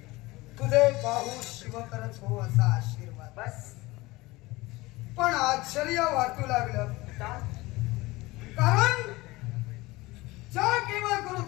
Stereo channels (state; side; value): quieter; right; 20.9 dB